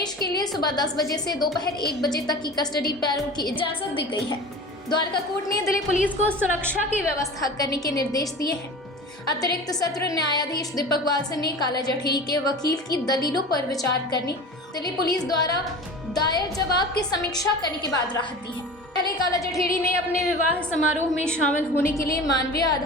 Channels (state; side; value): normal; both; correlation 0.35